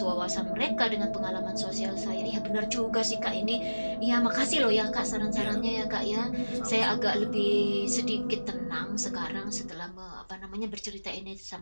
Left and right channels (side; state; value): both; inverted; correlation -1.00